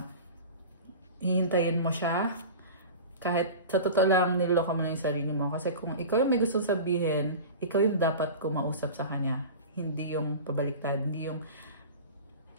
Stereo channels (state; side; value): inverted; both; correlation -0.34